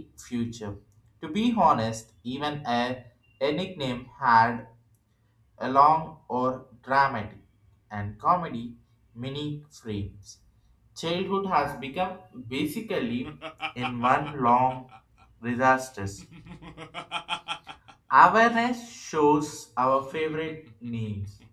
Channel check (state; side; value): identical; both; correlation 1.00